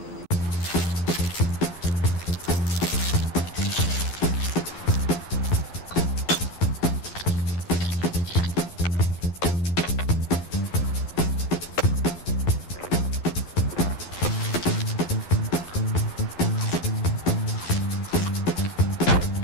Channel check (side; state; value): right; late; 12 ms